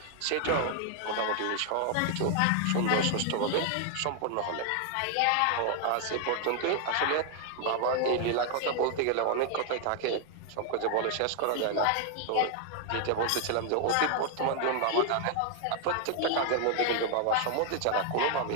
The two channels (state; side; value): different; both; correlation 0.00